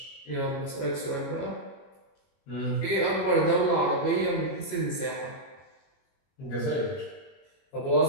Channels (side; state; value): right; late; 22 ms